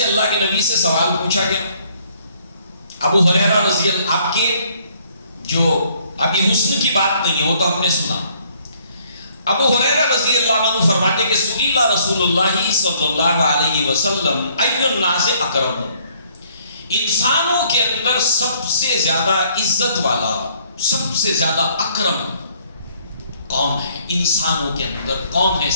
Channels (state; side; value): inverted; both; correlation -0.64